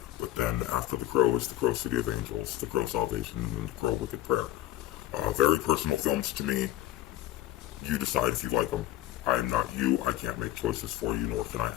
but then after The Crow is The Crow City of Angels, The Crow Salvation, and The Crow Wicked Prayer. Very personal films to me. You decide if you like them. I am not you. I can't make choices for you, nor can I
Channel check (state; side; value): quieter; right; 14.6 dB